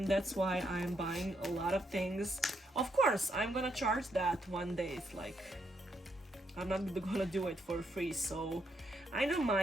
that's why I'm buying a lot of things. Of course, I'm gonna charge that one day. It's like, I'm not gonna do it for free, so I don't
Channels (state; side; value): normal; both; correlation 0.77